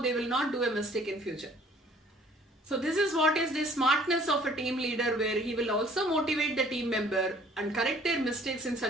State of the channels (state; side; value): normal; both; correlation 0.56